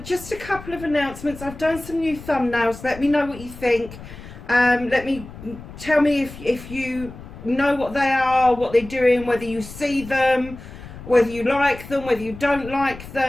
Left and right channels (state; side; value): noise; left; rumble, 15 dB below the sound